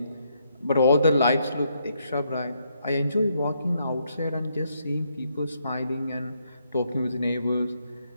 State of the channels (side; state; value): both; inverted; correlation -0.75